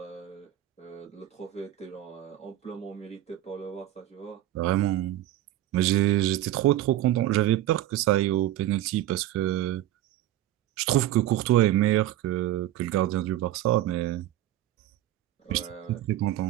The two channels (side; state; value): left; quieter; 13.8 dB